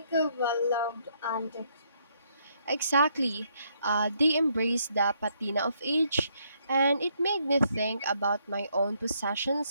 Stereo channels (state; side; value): inverted; both; correlation -0.72